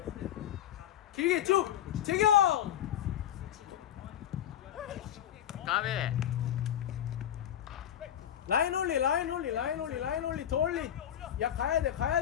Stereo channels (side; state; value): right; quieter; 10.7 dB